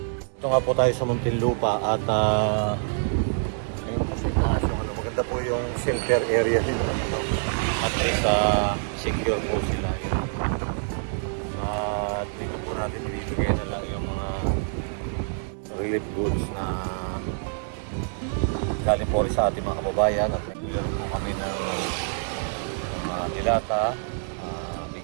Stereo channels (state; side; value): silent; left; digital silence